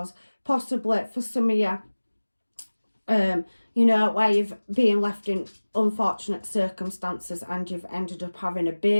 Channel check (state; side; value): inverted; both; correlation -1.00